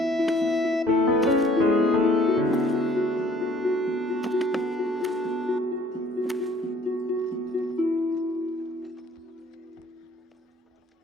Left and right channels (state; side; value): normal; both; correlation 0.57